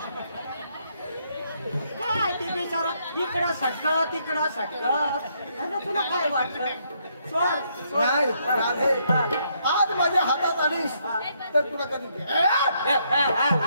काय ते बिचारा इकडं सटक तिकडं सटक आणि तुला काय वाटलं नाही राधे आज माझ्या हातात आलीस तर तुला कधी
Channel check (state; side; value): inverted; both; correlation -0.73